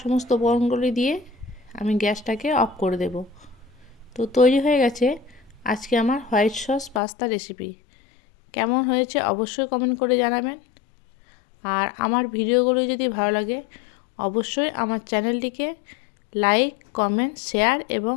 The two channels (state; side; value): drops out; right; at 7.0 s